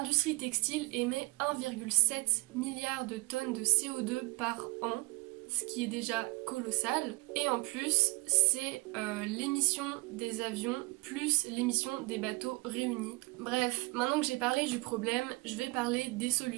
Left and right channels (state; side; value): quieter; left; 24.7 dB